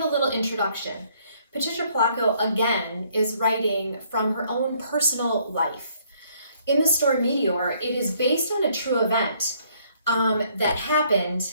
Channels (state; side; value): inverted; both; correlation -0.65